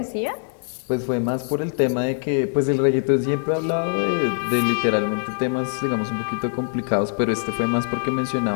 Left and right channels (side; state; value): right; silent; digital silence